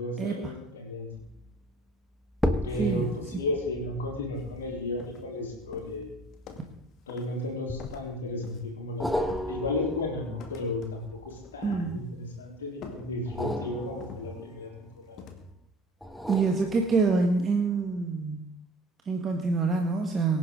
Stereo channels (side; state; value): both; normal; correlation 0.47